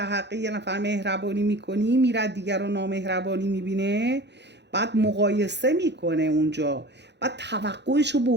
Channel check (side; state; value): left; late; 0.50 ms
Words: حق یه نفر مهربانی میکنی، میره دیگر رو نامهربانی میبینه، بعد مقایسه میکنه اونجا، بعد توقعشو